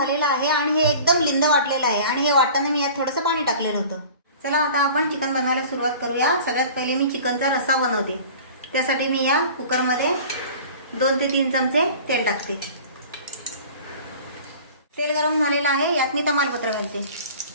आहे आणि हे एकदम लिंद वाटलेलं आहे आणि हे वाटताना मी यात थोडंसं पाणी टाकलेलं होतं. चला आता आपण चिकन बनवायला सुरुवात करूया. सगळ्यात पहिले मी चिकनचा रस्सा बनवते. त्यासाठी मी या कुकरमध्ये 2 ते 3 चमचे तेल टाकते. तेल गरम झालेलं आहे. यात मी तमालपत्र घालते.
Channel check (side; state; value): both; inverted; correlation -0.43